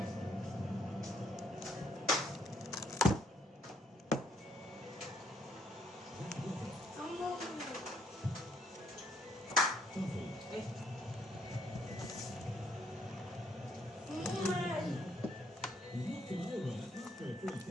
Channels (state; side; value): normal; both; correlation 0.69